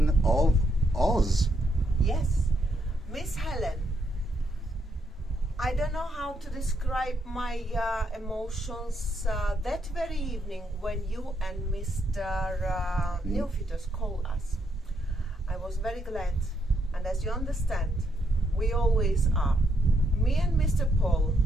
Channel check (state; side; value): normal; both; correlation 0.76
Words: of Oz. Yes, Miss Helen. I don't know how to describe my emotions that very evening when you and Mr. Neophytos called us. I was very glad, and as you understand, we always are. Me and Mr. Paul